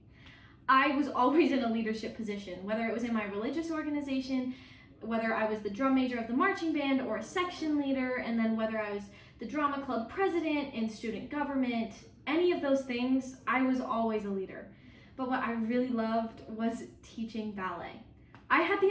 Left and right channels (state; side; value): identical; both; correlation 1.00